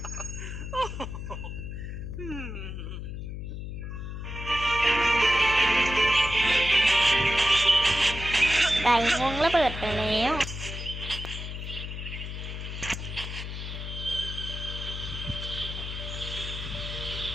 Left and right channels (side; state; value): left; noise; hum, 7 dB below the sound